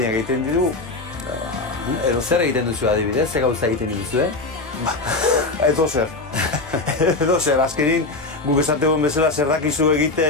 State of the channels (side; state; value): right; quieter; 3.3 dB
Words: egiten ditugu. Edo zer egiten duzu adibidez, ze gauza egiten duzu, Edo zer, azkenin guk esategon bezala zer dakizu